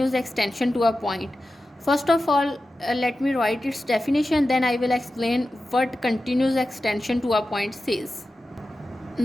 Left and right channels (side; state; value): both; normal; correlation 0.93